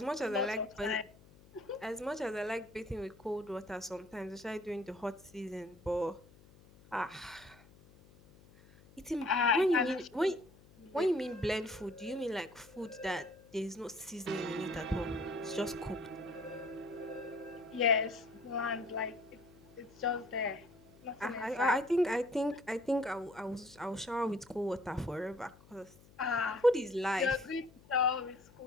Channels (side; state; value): left; noise; hum, 24 dB below the sound